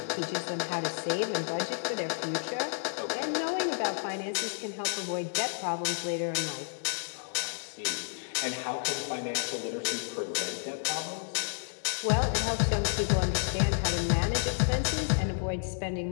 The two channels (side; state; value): right; silent; digital silence